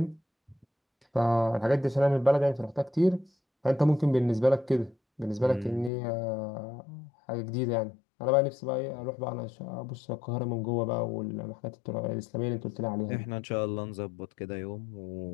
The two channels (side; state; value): right; drops out; at 5.9 s